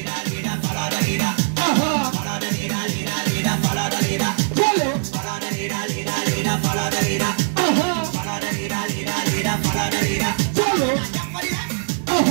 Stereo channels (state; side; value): silent; left; digital silence